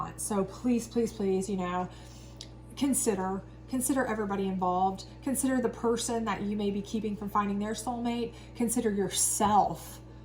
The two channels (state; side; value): identical; both; correlation 1.00